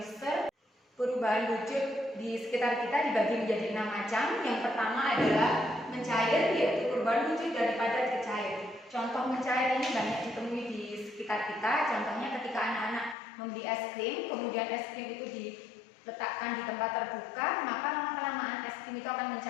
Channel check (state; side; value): drops out; right; at 13.2 s